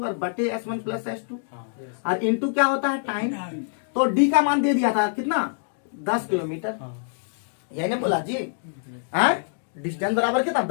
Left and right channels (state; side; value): silent; right; digital silence